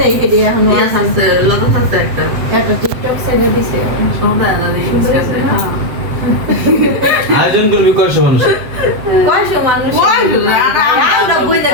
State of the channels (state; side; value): late; left; 7.8 ms